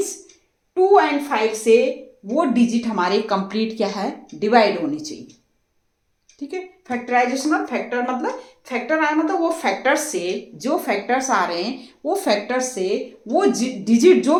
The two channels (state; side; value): identical; both; correlation 1.00